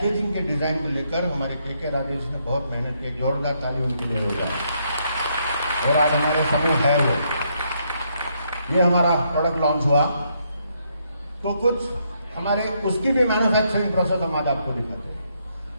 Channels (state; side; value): inverted; both; correlation -0.75